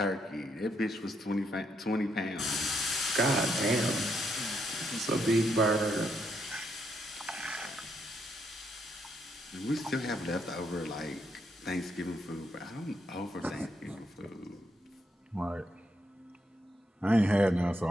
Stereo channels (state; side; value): normal; both; correlation 0.77